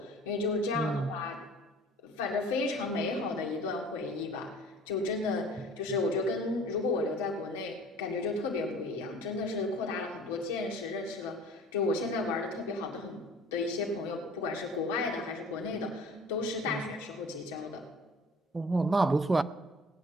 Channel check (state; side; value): normal; both; correlation 0.47